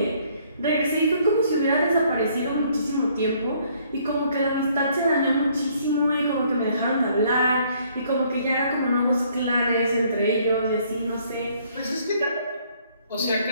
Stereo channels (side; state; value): both; inverted; correlation -0.64